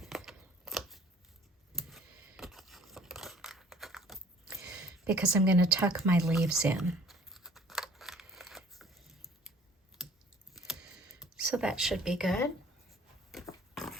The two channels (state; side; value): normal; both; correlation 0.54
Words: Because I'm going to tuck my leaves in. So that should be good.